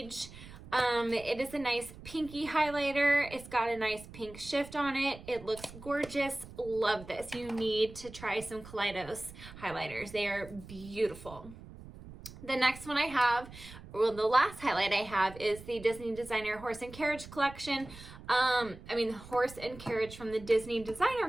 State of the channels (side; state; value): right; noise; rumble, 16 dB below the sound